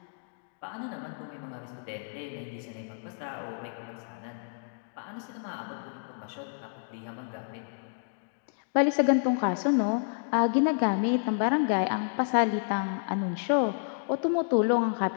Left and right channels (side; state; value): right; silent; digital silence